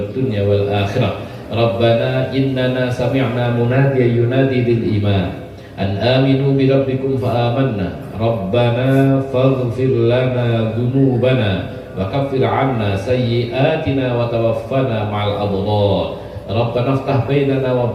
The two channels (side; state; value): both; identical; correlation 1.00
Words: dunya wal akhirah. Rabbana innana sami'na munadiyan yunadi lil iman an aminu bi rabbikum fa amanna. Rabbana faghfir lana dhunubana wa kaffir 'anna sayyi'atina wa tawaffana ma'al abrar. Rabbana iftah bainana wa